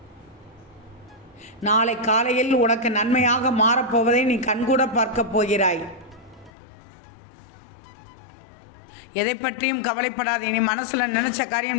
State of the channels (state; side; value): drops out; right; at 6.5 s